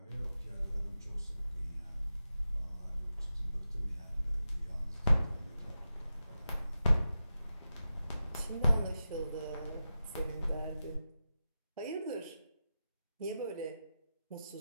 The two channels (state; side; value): inverted; both; correlation -0.91